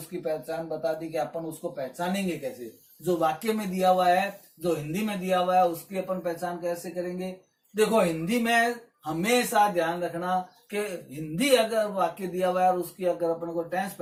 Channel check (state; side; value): identical; both; correlation 1.00